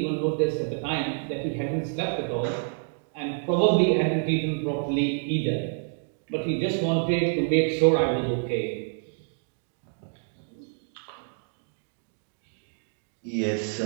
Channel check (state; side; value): silent; left; 60 dB below the other